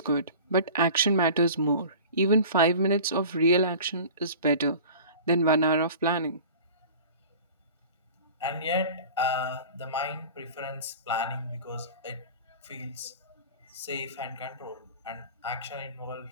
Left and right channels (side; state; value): both; inverted; correlation -0.39